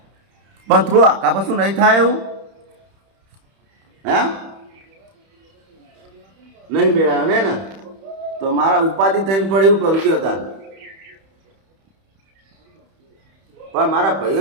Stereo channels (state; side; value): late; left; 31 ms